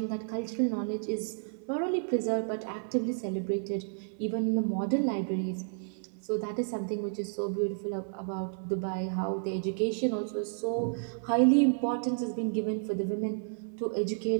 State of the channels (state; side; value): silent; left; 57 dB below the other